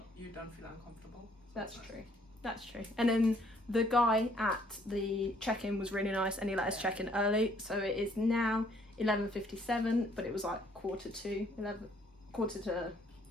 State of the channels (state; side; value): normal; both; correlation 0.64